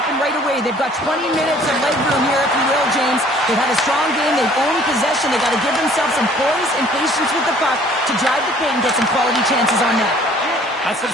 right away. They've got 20 minutes of leg room here, if you will, James. They've had a strong game. They've owned possession. They've got to give themselves some poise and patience with the puck to drive the paint and get some quality chances on net. That's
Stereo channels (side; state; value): both; normal; correlation 0.55